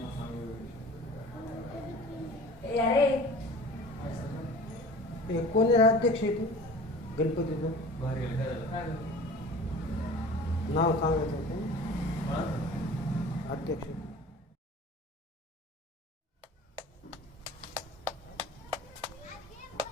कोणी अध्यक्ष आहे तू गणपतीचं नाव सांगायचं होतं अध्यक्ष.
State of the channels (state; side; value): normal; both; correlation 0.42